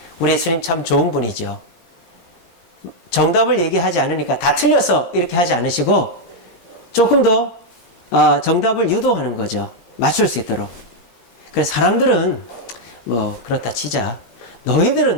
우리 예수님 참 좋은 분이죠. 정답을 얘기하지 않으니까 다 틀렸어 이렇게 하지 않으시고 조금 더 정답을 유도하는 거죠. 맞출 수 있도록. 그래서 사람들은 뭐 그렇다 치자.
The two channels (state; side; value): late; right; 17 ms